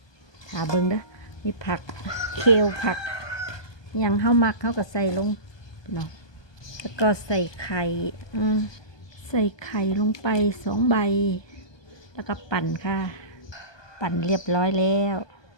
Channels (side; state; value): right; late; 1.2 ms